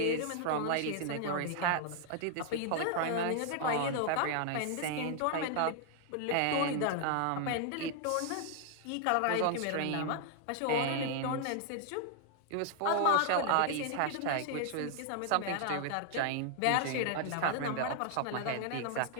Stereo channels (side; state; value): both; different; correlation 0.00